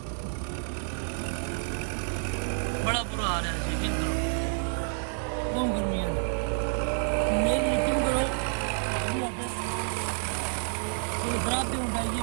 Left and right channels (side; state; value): left; silent; 58 dB below the other